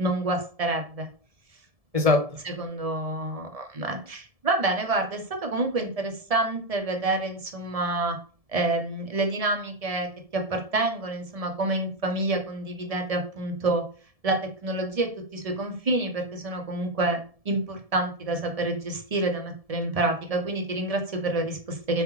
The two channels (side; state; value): left; late; 1.7 ms